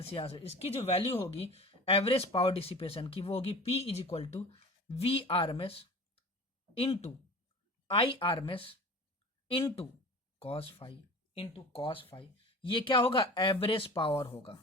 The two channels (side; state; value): both; normal; correlation 0.38